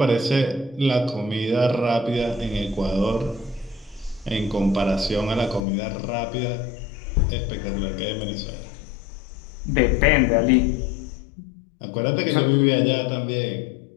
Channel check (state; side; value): drops out; right; at 5.7 s